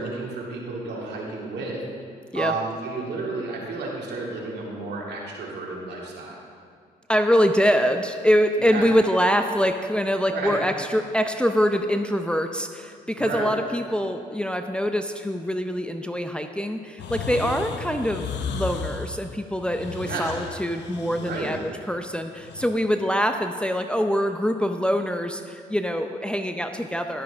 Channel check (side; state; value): both; normal; correlation 0.83